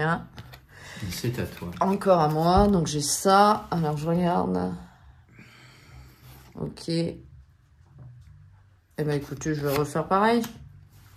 C'est à toi. Encore à moi. Donc, j'ai ça. Alors, je regarde. Ok. Eh ben, écoutez, je vais refaire pareil.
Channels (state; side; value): identical; both; correlation 1.00